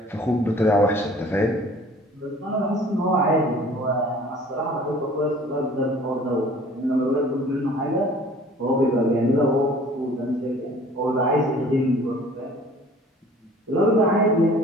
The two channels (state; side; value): normal; both; correlation 0.50